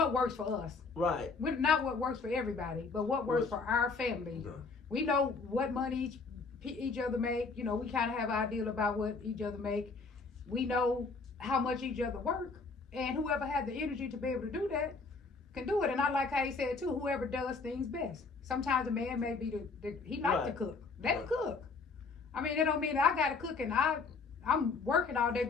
for us. right. Not what works for everybody, but what works for our family. Yeah. We know what money each other make. You know, we kind of have an idea about what each other make. We know how much each other work, and whoever had the energy to be able to do that can do it. And I like how he said too, whoever does things best. Sometimes a man may be he likes to cook. Let him cook. I mean, it don't mean that I got to cook and I'm working all day,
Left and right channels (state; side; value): quieter; right; 4.4 dB